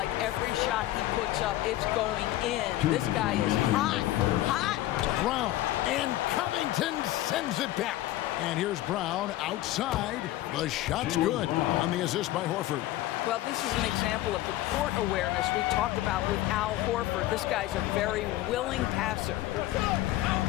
every shot he puts up, it's going in. This guy is hot, hot. Brown, and Covington sends it back. And here's Brown outside. The shot's good on the assist by Horford. Well, this is an example of the court awareness we talked about with Al Horford. This guy's a very willing passer.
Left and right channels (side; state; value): right; quieter; 15.4 dB